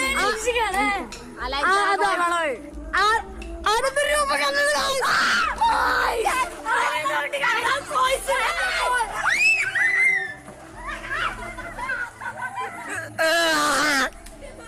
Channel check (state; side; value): identical; both; correlation 1.00